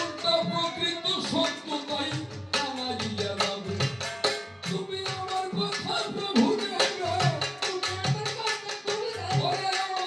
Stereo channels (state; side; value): identical; both; correlation 1.00